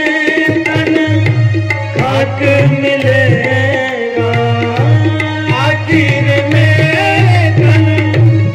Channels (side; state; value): both; identical; correlation 1.00